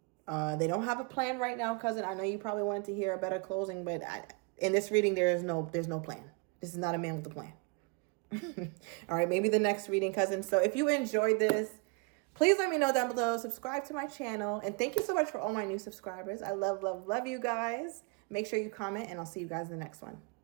They don't have a plan right now, cousin. I know you probably wanted to hear a better closing, but in this reading, there's no plan. This is not a man with a plan. All right, maybe the next reading, cousin. So if you enjoyed this, please let me know down below. Subscribe to my channel. And thank you so much for all my new subscribers. I love, love, love you guys. Make sure you comment, and I'll see you guys in the next one.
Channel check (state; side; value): quieter; left; 31.5 dB